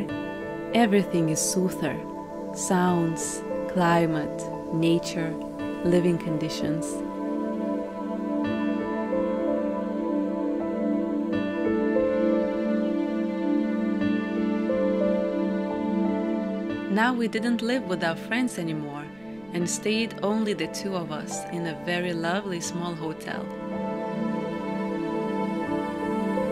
everything is soother: sounds, climate, nature, living conditions. Now we didn't live with our friends anymore and stayed only the two of us in a very lovely small hotel.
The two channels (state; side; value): noise; right; rumble, 27 dB below the sound